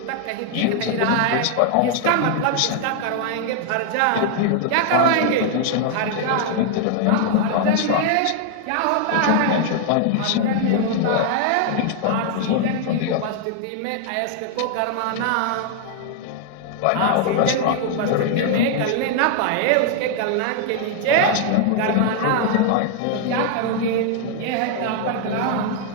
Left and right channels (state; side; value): different; both; correlation 0.00